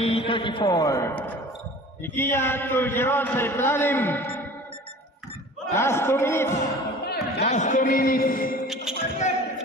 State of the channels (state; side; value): normal; both; correlation 0.43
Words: Ikia to Jeron sa ilalim. Last 2 minutes. Last 2 minutes.